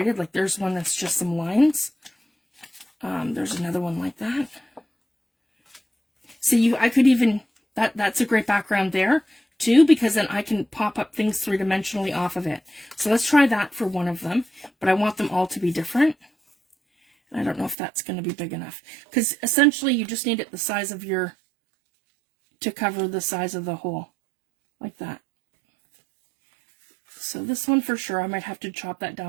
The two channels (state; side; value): drops out; left; at 17.8 s